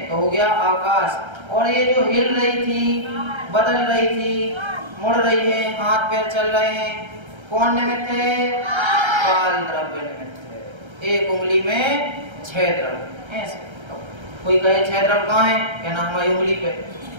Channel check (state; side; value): late; left; 1.3 ms